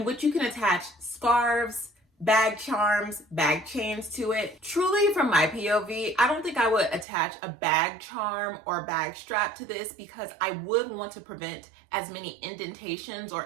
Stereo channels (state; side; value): drops out; left; at 7.1 s